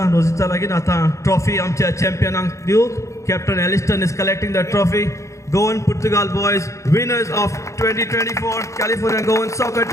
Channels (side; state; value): right; late; 0.15 ms